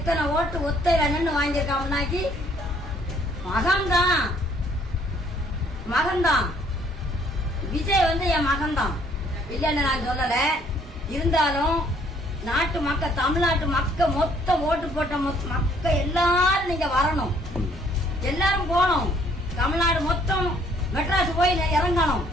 ஓட்டு ஒத்தையில நின்று வாங்கியிருக்காங்கன்னாக்கி மகன்தான் விஜய் என் மகன்தான் இல்லைன்னு நான் சொல்லல. இருந்தாலும் நாட்டு மக்கள், தமிழ்நாட்டு மக்கள் மொத்தம் ஓட்டு போட்ட மக்கள் எல்லாரும் நீங்க வரணும். எல்லாரும் போகணும். தமிழ்நாடு மொத்தம் மெட்ராஸ் போய் இறங்கணும்.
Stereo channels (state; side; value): normal; both; correlation 0.63